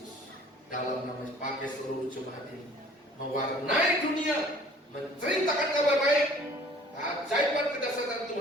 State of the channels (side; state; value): both; normal; correlation 0.53